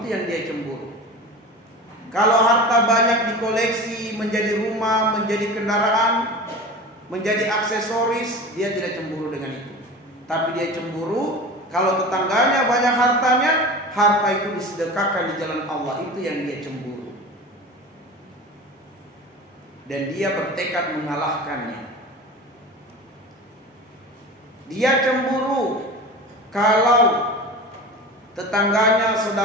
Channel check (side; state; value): both; normal; correlation 0.33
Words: yang dia cemburu. Kalau harta banyak dikoleksi menjadi rumah, menjadi kendaraan, menjadi aksesoris, dia tidak cemburu dengan itu. Tapi dia cemburu kalau tetangganya banyak hartanya, harta itu disedekahkan di jalan Allah, itu yang dia cemburu. Dan dia bertekad mengalahkannya. Dia cemburu kalau tetangganya,